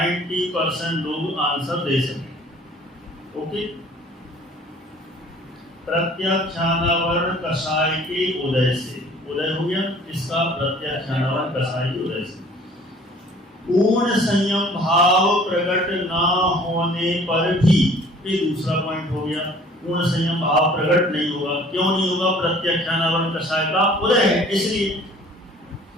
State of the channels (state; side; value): normal; both; correlation 0.52